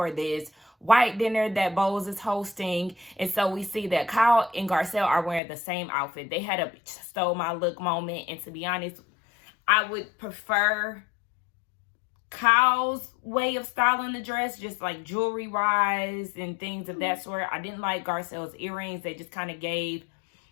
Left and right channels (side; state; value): right; drops out; at 5.4 s